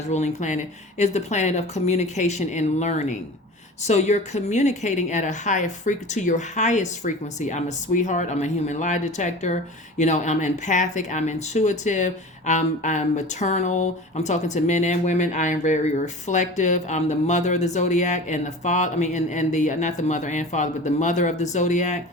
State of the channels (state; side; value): normal; both; correlation 0.36